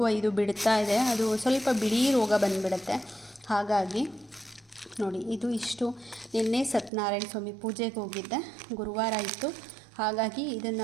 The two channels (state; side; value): drops out; left; at 6.9 s